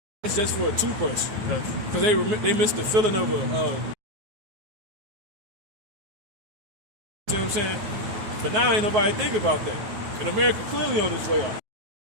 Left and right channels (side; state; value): left; late; 9.4 ms